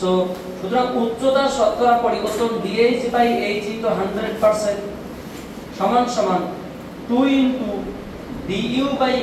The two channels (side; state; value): both; identical; correlation 1.00